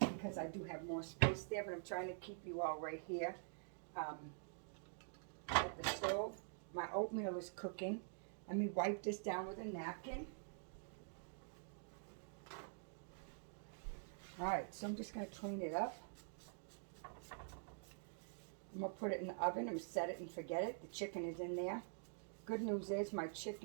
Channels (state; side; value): silent; left; digital silence